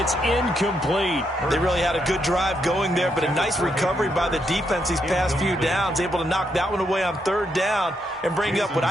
incomplete. They really had a good drive going there, but a nice recovery by the defense these past few downs, able to knock that one away on 3rd down and bring up what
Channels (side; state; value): both; normal; correlation 0.79